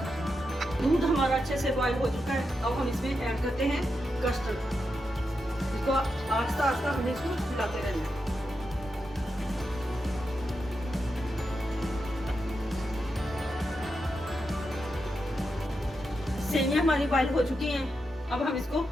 हैं। दूध हमारा अच्छे से बॉईल हो चुका है। अब हम इसमें ऐड करते हैं कस्टर्ड। इसको आस्ता आस्ता हमें इसको मिलाते रहना है। सेवियां हमारी बॉईल हो चुकी हैं। अब हम इसको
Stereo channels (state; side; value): normal; both; correlation 0.86